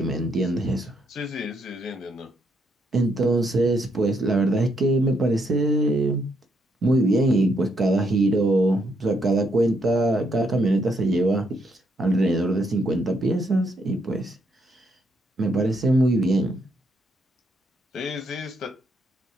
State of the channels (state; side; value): normal; both; correlation 0.75